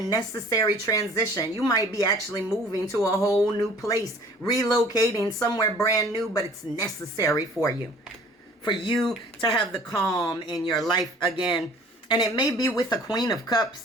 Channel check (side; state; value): both; normal; correlation 0.51